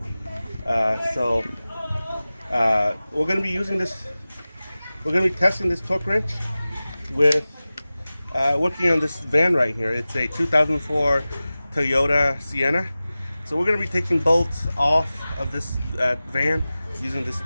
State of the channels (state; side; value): inverted; both; correlation -0.97